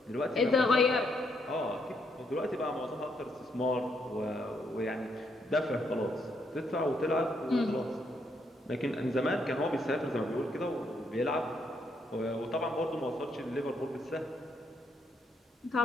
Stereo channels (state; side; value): normal; both; correlation 0.75